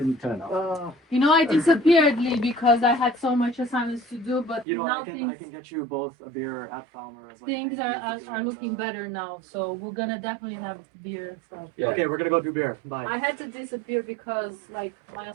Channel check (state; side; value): drops out; left; at 4.7 s